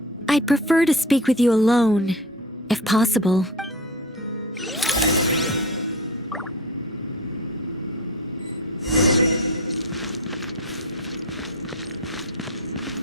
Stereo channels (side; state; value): both; normal; correlation 0.31